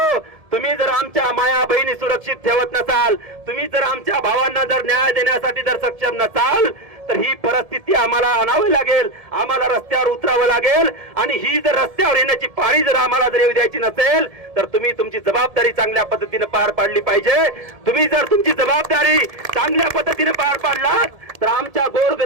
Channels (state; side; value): late; left; 1.7 ms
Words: तुम्ही जर आमच्या माया बहिणी सुरक्षित ठेवत नसाल, तुम्ही जर आमच्या भावांना जर न्याय देण्यासाठी जर सक्षम नसाल, तर ही परिस्थिती आम्हाला आणावी लागेल, आम्हाला रस्त्यावर उतरावं लागेल. आणि ही जर रस्त्यावर येण्याची पाळी जर आम्हाला जर येऊ द्यायची नसेल, तर तुम्ही तुमची जबाबदारी चांगल्या पद्धतीने पार पाडली पाहिजे. तुम्ही जर तुमची जबाबदारी चांगल्या पद्धतीने पार पाडलात, तर आमच्या